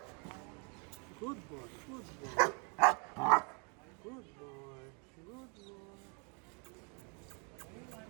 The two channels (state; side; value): quieter; left; 36.1 dB